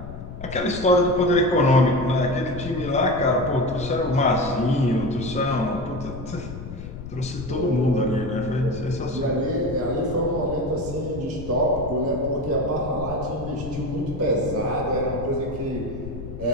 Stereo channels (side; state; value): left; noise; rumble, 10 dB below the sound